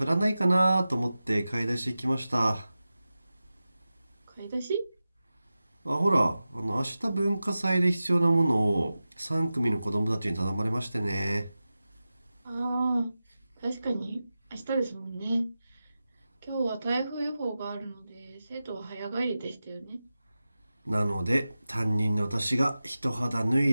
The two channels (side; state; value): both; inverted; correlation -0.94